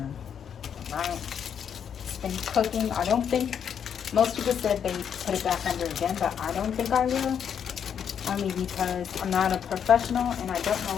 right? It's been cooking. I don't think, most people said they put it back under again, but I don't think I will. Only because I'm not a professional and I don't know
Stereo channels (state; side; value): quieter; right; 8.1 dB